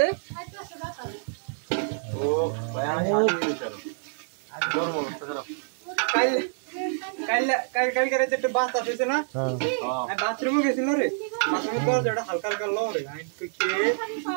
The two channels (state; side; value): silent; left; 58 dB below the other